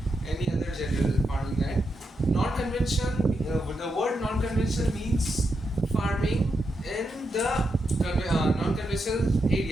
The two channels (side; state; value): both; normal; correlation 0.84